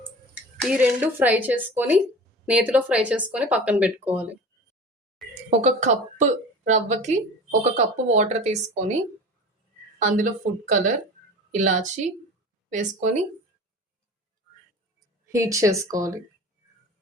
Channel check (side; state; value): both; normal; correlation 0.37